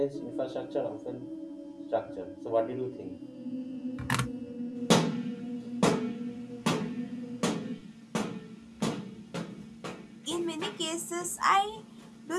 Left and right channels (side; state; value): both; identical; correlation 1.00